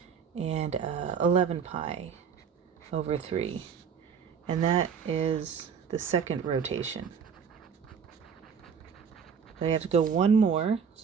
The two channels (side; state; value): left; quieter; 6.7 dB